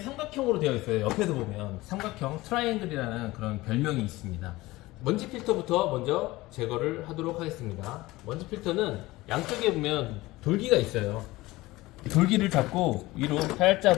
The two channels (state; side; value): quieter; right; 19.4 dB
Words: 되어 있어요. 옆에서 보면 삼각형 트라이앵글이라는 그런 별명이 있습니다. 먼지 필터부터 먼저 제거를 하도록 하겠습니다. 먼지 필터는 양쪽에 보면 돌기가 있어요. 돌기를 잡고 위로